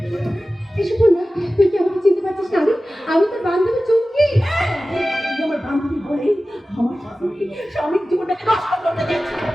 এসব না, তুই কি আমাকে চিনতে পারছিস না? আমি তোর বান্ধবী চুমকি। আমার বান্ধবী বলে আমার স্বামীর জীবনটাকে নষ্ট করতে যাচ্ছিস।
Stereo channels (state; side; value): normal; both; correlation 0.96